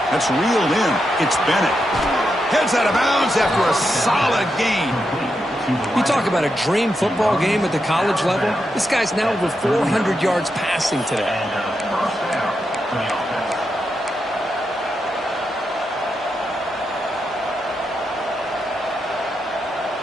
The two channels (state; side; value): normal; both; correlation 0.85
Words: That's reeled in. It's Bennett. Heads out of bounds after a solid gain. You talk about a dream football game at the college level. This guy's now over 400 yards passing today. First down for the offense.